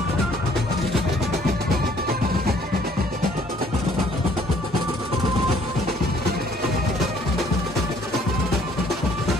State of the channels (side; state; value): both; normal; correlation 0.60